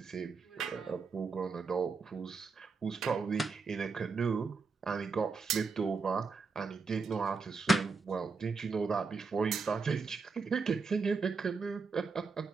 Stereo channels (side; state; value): left; quieter; 4.6 dB